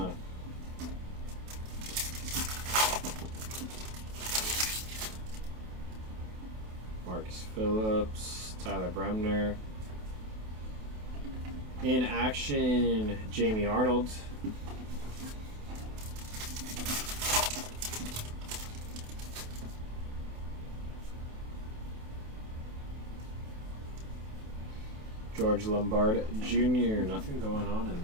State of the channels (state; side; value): late; left; 28 ms